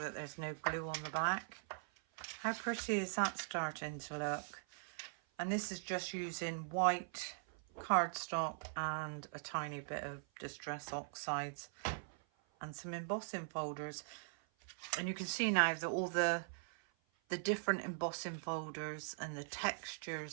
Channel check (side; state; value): left; silent; 50 dB below the other